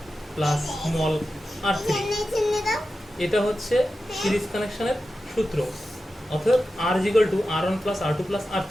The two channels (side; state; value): both; normal; correlation 0.92